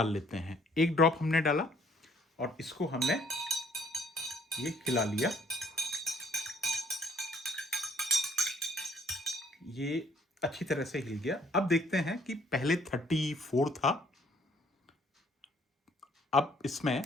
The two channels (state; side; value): normal; both; correlation 0.61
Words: लेते हैं। 1 ड्रॉप हमने डाला और इसको हमने ये खिला लिया। ये अच्छी तरह से हिल गया। अब देखते हैं कि पहले 34 था, अब इसमें